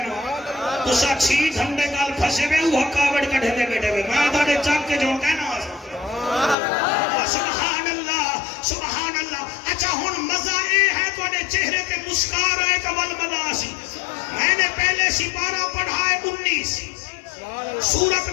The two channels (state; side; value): drops out; right; at 6.6 s